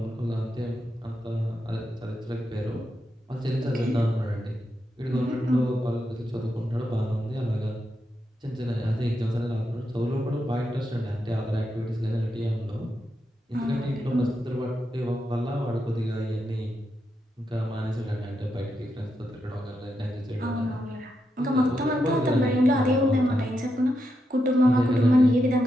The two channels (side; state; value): both; normal; correlation 0.84